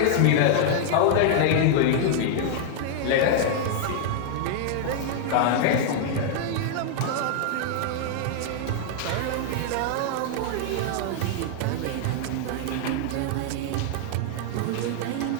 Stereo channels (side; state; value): both; different; correlation -0.01